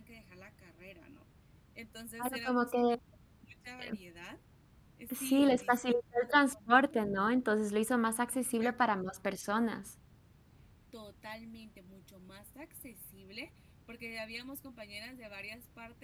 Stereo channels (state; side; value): identical; both; correlation 1.00